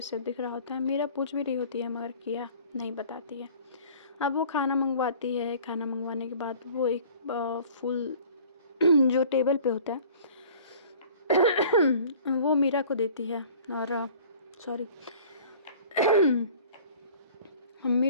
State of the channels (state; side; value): inverted; both; correlation -0.48